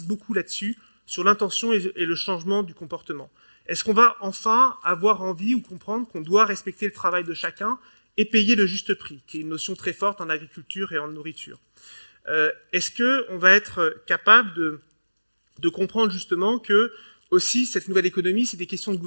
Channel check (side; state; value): both; inverted; correlation -1.00